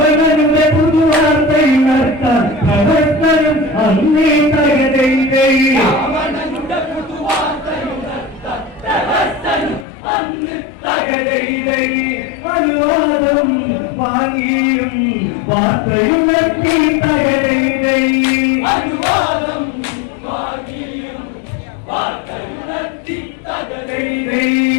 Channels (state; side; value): drops out; right; at 9.9 s